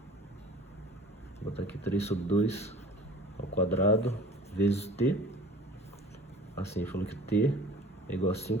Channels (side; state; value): both; normal; correlation 0.45